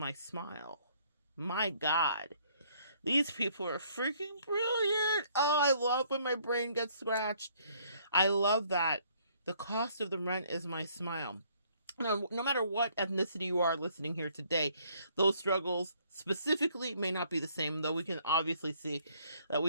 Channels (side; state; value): both; inverted; correlation -0.64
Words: smile. My God. These people are freaking brilliant. Oh, I love when my brain gets scratched. I love that. The cost of the rent is my smile. Now, no matter what ethnicity you are listening here today, those struggles specifically may not be the same, though we can obviously see that